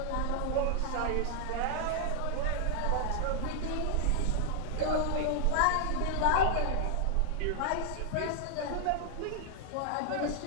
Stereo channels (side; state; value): both; different; correlation -0.01